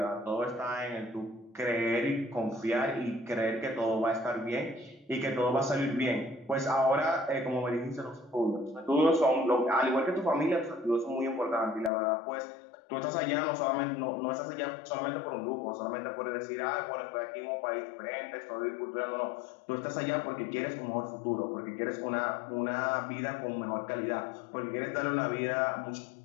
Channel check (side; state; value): right; drops out; at 11.9 s